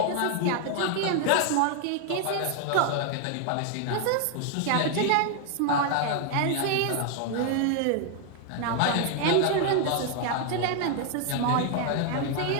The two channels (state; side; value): different; both; correlation 0.00